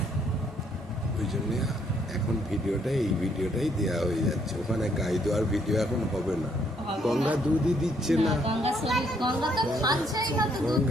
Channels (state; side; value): normal; both; correlation 0.69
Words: ওই জন্য এখন এই ভিডিওটাই দেওয়া হয়ে যাচ্ছে, ওখানে গাই দেওয়ার ভিডিও এখন হবে না। গঙ্গা দুধই দিচ্ছে না, গঙ্গা তো খাচ্ছেই না, তো দুধ